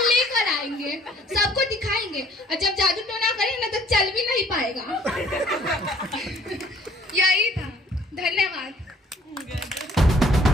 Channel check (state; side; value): normal; both; correlation 0.59